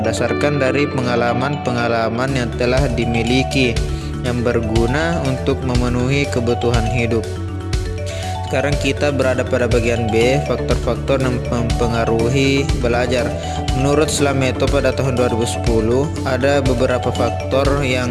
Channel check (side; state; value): both; identical; correlation 1.00